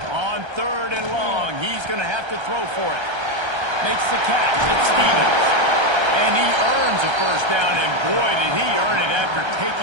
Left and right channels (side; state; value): left; late; 1.3 ms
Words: On 3rd and long, he's going to have to throw for it. Makes the catch. It's Stevens. And he earns a first down, and boy, did he earn it after